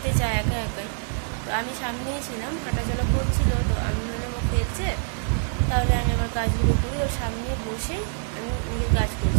চায় একা একাই। তো আমি সামনেই ছিলাম, হাঁটাচলা করছিল, তো আমি ভাবলাম ও খেলছে, তাহলে আমি আমার কাজগুলো করি। ওর সামনে বসেই আমি নিজের কাজ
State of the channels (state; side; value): silent; left; digital silence